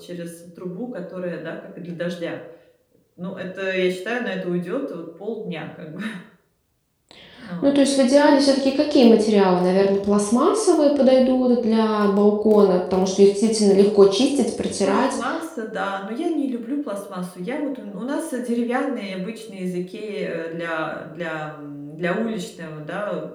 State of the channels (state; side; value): identical; both; correlation 1.00